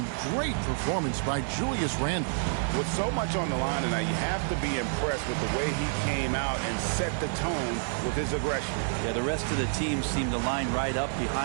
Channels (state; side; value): silent; left; digital silence